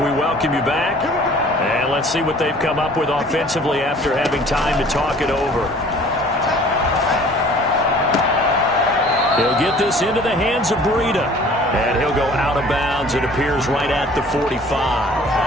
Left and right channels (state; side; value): normal; both; correlation 0.50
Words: welcome you back. And let's see what they've come up with offensively after having time to talk it over. He'll get this into the hands of Breida. And he'll go out of bounds. It appears right at the